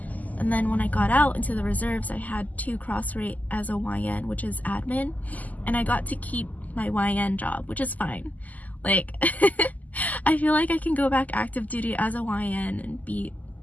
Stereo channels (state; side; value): late; right; 0.079 ms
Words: And then when I got out into the reserves, I had to cross-rate as a YN, which is admin. And I got to keep my YN job, which is fine. Like, I feel like I can go back active duty as a YN